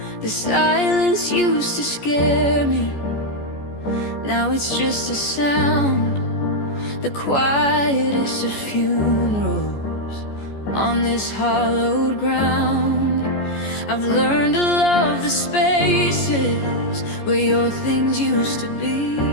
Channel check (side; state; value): right; late; 14 ms